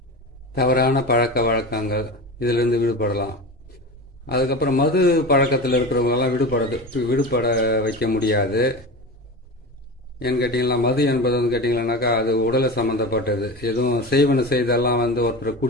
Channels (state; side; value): normal; both; correlation 0.28